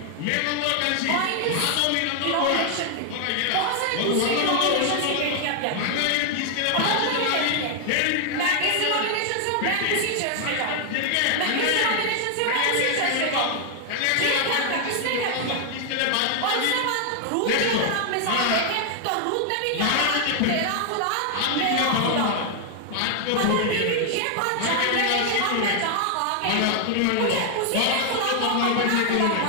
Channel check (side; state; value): both; different; correlation 0.00